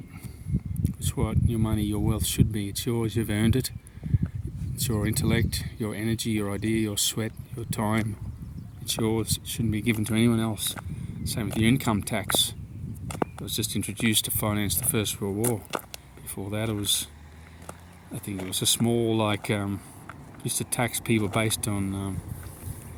It's what your money, your wealth should be. It's yours, you've earned it. It's your intellect, your energy, your idea, your sweat, your time. It's yours, it shouldn't be given to anyone else. Same with your income tax. It was just introduced to finance the First World War. Before that I think it was a small, used to tax people based on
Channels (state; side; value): identical; both; correlation 1.00